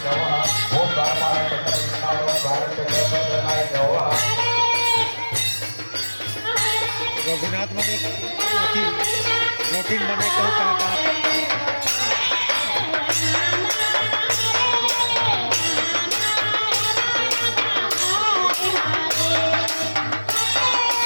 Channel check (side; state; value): both; inverted; correlation -1.00